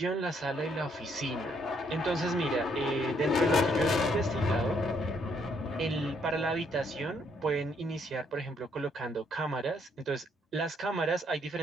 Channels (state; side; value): normal; both; correlation 0.70